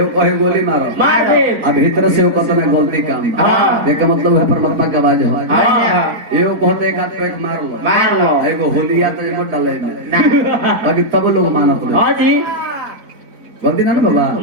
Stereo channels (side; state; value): left; late; 4.3 ms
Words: कहे गोली मारो अब भीतर से वो कतना गलती काम एक मतलब है परमात्मा की आवाज है एओ कहते एक हाथ पे मार लो एगो होलिया तो मत डाले में बाकी तब लोग मानत नहीं हां जी गलती ना बाबा